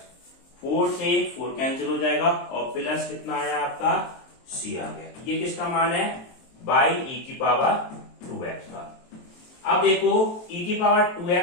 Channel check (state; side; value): late; right; 23 ms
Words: 4 से 4 कैंसिल हो जाएगा और प्लस कितना आया आपका c आ गया। ये किसका मान है, बाई e की पावर 2x का। अब देखो e की पावर